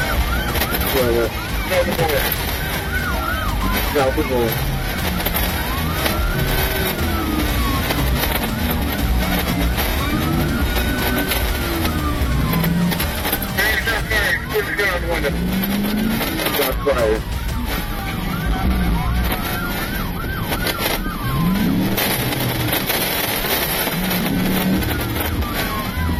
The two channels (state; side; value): identical; both; correlation 1.00